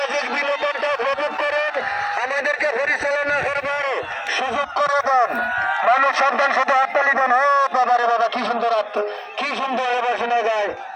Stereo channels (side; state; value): both; identical; correlation 1.00